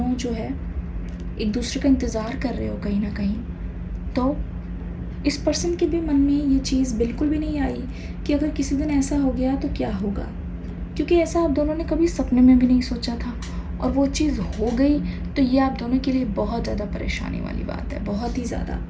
जो है एक दूसरे का इंतज़ार कर रहे हो कहीं ना कहीं। तो इस पर्सन के भी मन में ये चीज़ बिल्कुल भी नहीं आई कि अगर किसी दिन ऐसा हो गया तो क्या होगा, क्योंकि ऐसा आप दोनों ने कभी सपने में भी नहीं सोचा था, और वो चीज़ हो गई तो ये आप दोनों के लिए बहुत ज़्यादा परेशानी वाली बात है, बहुत ही ज़्यादा।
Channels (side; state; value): both; identical; correlation 1.00